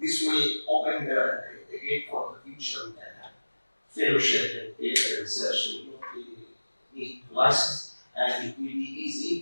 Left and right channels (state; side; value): inverted; both; correlation -1.00